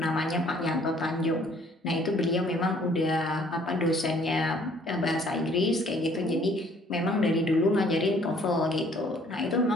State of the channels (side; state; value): both; normal; correlation 0.59